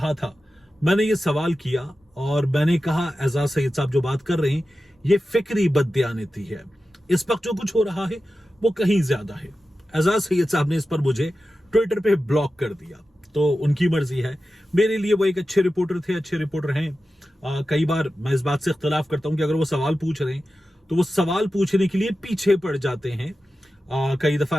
था? मैंने ये सवाल किया और मैंने कहा एजाज सैयद साहब जो बात कर रहे हैं ये फिक्री बददियानती है, इस वक्त जो कुछ हो रहा है वो कहीं ज्यादा है। एजाज सैयद साहब ने इस पर मुझे ट्विटर पे ब्लॉक कर दिया, तो उनकी मर्जी है। मेरे लिए वो एक अच्छे रिपोर्टर थे, अच्छे रिपोर्टर हैं। कई बार मैं इस बात से इख्तलाफ करता हूं कि अगर वो सवाल पूछ रहे हैं तो वो सवाल पूछने के लिए पीछे पड़ जाते हैं। कई दफा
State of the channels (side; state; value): both; normal; correlation 0.93